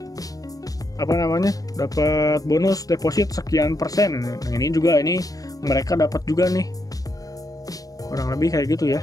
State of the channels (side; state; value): right; late; 0.17 ms